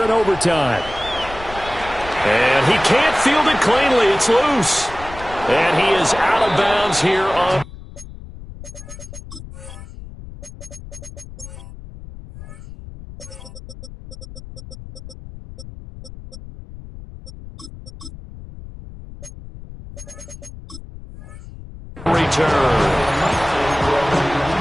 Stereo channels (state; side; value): noise; left; rumble, 15 dB below the sound